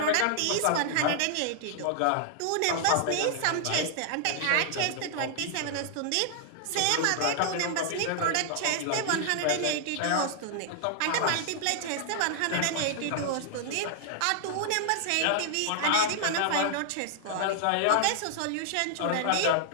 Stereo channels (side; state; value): both; different; correlation -0.01